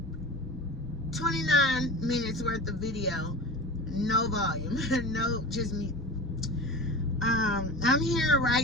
29 minutes worth of video, no volume, no, just me. I'm here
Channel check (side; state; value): right; noise; rumble, 17 dB below the sound